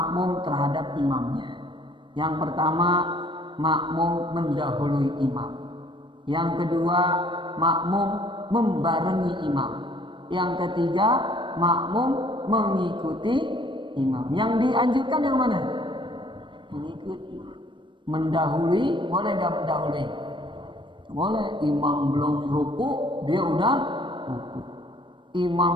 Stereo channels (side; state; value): left; late; 0.23 ms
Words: terhadap imamnya. Yang pertama, makmum mendahului imam. Yang kedua, makmum membarengi imam. Yang ketiga, makmum mengikuti imam. Yang dianjurkan yang mana? Mengikuti. Mendahului, boleh nggak mendahului? Boleh. Imam belum ruku, dia udah ruku.